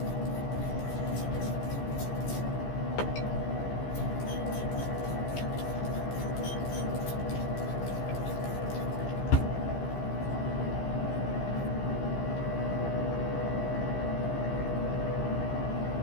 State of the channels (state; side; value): late; right; 15 ms